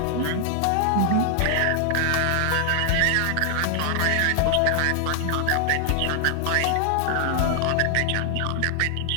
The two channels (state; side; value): different; both; correlation 0.00